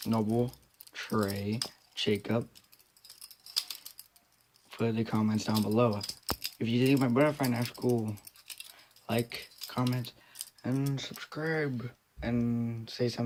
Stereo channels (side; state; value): both; identical; correlation 1.00